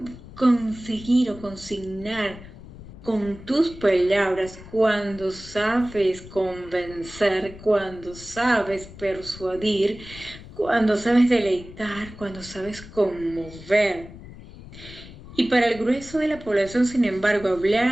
conseguir o consignar con tus palabras, cuando sabes convencer, cuando sabes persuadir, cuando sabes deleitar, cuando sabes conmover. Y para el grueso de la población, sin embargo,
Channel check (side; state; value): left; noise; rumble, 16 dB below the sound